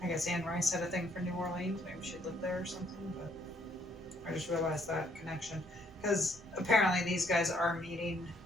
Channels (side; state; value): both; normal; correlation 0.68